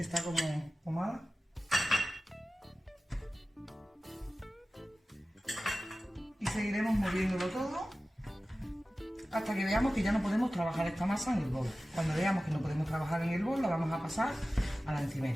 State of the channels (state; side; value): normal; both; correlation 0.96